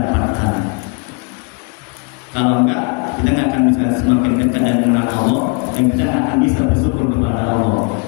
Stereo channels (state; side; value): quieter; right; 32.3 dB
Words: Kalau enggak, kita nggak akan bisa semakin dekat dan mengenal Allah, dan kita nggak akan bisa bersyukur kepada Allah.